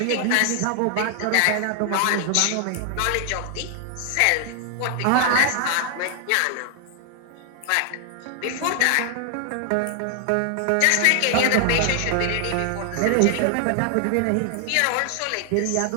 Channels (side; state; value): both; different; correlation 0.00